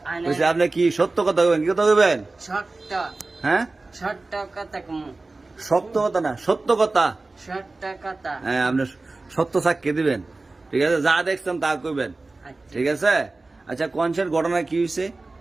কইছে আপনি কি সত্য কথা কইবেন, কি কথা কইবেন? ছোট্ট হ্যাঁ, ছোট্ট কথা কমু সত্য কথা না, সত্য কথা। ছোট্ট কথা। হ্যাঁ, আপনি সত্য সাক্ষী দিবেন, ঠিক আছে? যা দেখছেন তা কইবেন, আচ্ছা। ঠিক আছে? আচ্ছা কনসের ঘটনা কি হয়েছে?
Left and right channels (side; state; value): left; quieter; 3.3 dB